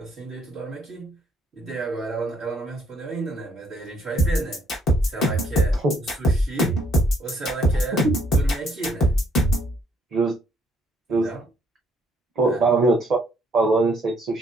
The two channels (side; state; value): both; normal; correlation 0.68